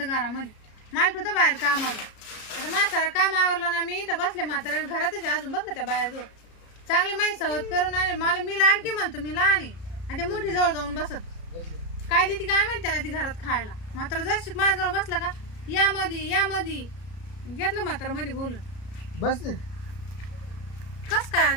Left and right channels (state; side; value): late; right; 33 ms